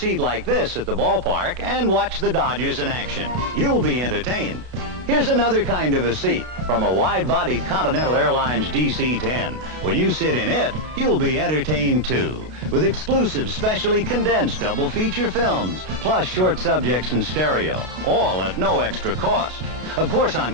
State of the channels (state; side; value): late; left; 32 ms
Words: like this at the ballpark and watch the Dodgers in action. You'll be entertained. Here's another kind of a seat from a wide-bodied Continental Airlines DC-10. When you sit in it, you'll be entertained too, with exclusive specially condensed double feature films, plus short subjects in stereo, all at no extra cost. Of course, on